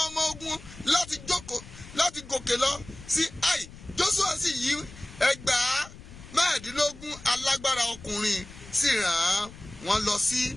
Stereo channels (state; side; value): noise; left; rumble, 17 dB below the sound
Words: ọmọ ogun láti gòkè lọ sí Ai. Joshua sì yí ẹgbàá mẹ́ẹ̀ẹ́dínlógún alágbára ọkùnrin sì rán wọn lọ sí